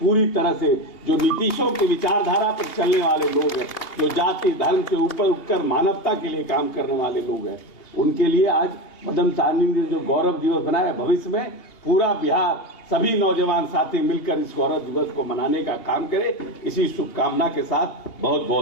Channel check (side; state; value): right; late; 2.8 ms